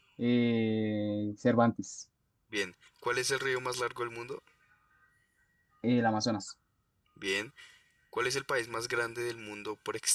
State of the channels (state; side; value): identical; both; correlation 1.00